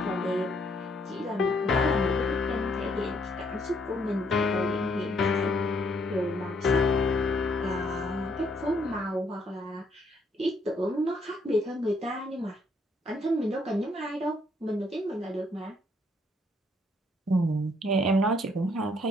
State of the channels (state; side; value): normal; both; correlation 0.69